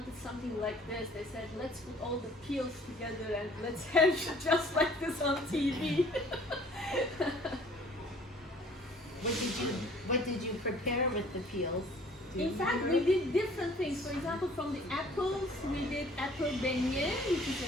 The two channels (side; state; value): both; normal; correlation 0.54